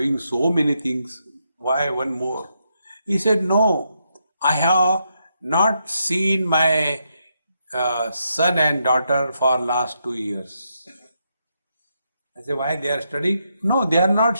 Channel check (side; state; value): both; inverted; correlation -0.80